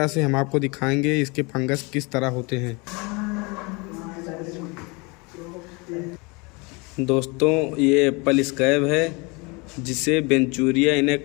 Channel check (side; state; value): right; quieter; 28.0 dB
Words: से हम आपको दिखाएंगे इसके फंगस किस तरह होते हैं। दोस्तों, ये एप्पल स्कैब है जिसे वेंचूरिया